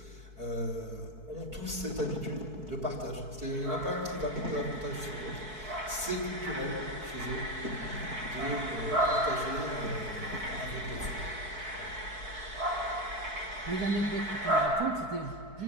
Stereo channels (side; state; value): left; late; 4.6 ms